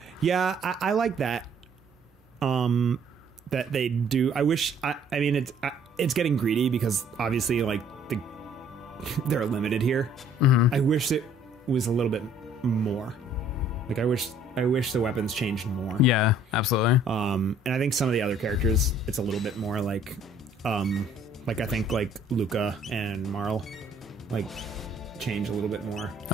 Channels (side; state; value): both; normal; correlation 0.59